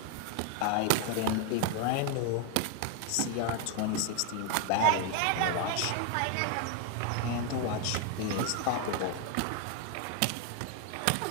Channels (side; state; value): both; different; correlation 0.01